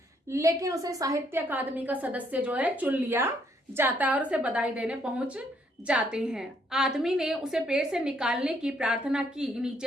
लेकिन उसे साहित्य अकादमी का सदस्य जो है चुन लिया जाता है और उसे बधाई देने पहुंच जाते हैं। आदमी ने उसे पेड़ से निकालने की प्रार्थना की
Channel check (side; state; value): both; normal; correlation 0.70